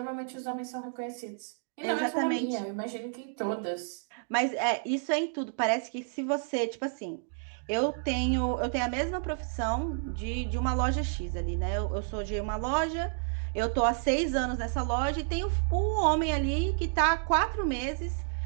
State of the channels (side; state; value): left; silent; digital silence